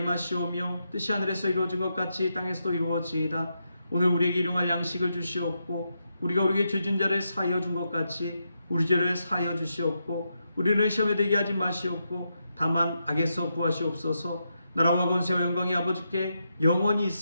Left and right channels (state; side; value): inverted; both; correlation -0.84